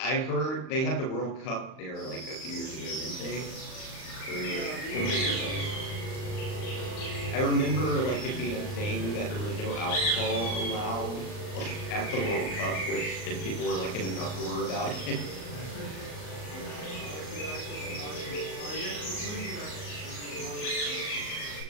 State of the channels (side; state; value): right; late; 39 ms